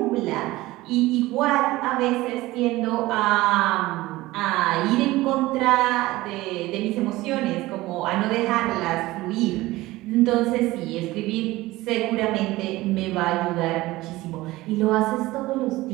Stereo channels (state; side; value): quieter; left; 18.6 dB